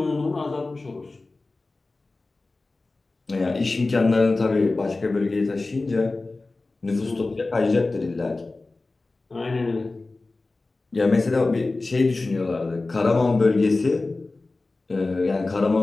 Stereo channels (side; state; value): right; quieter; 3.3 dB